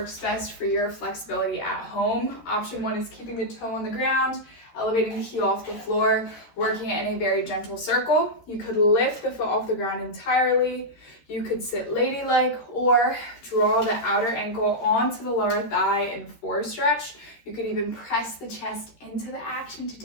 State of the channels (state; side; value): late; right; 13 ms